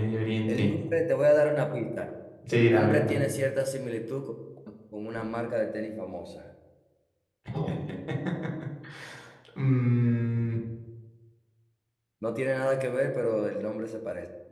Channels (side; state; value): both; identical; correlation 1.00